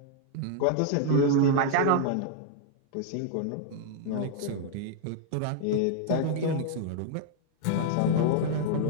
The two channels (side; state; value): both; different; correlation -0.01